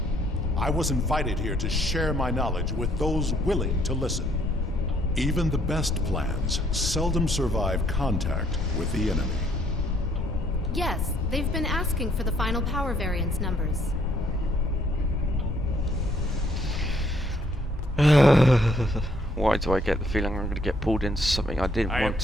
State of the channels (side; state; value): both; normal; correlation 0.67